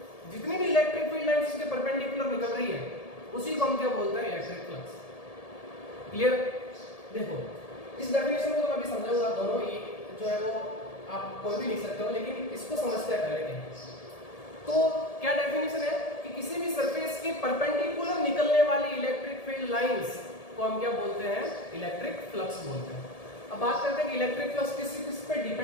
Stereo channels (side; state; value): right; late; 1.7 ms